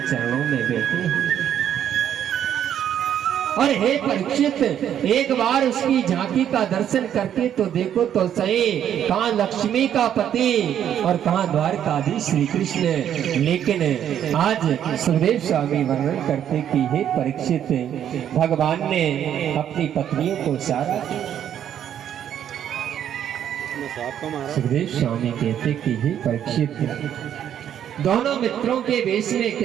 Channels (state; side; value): quieter; left; 9.9 dB